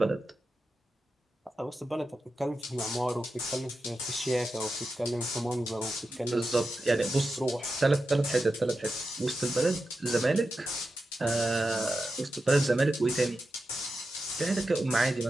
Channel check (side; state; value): both; normal; correlation 0.90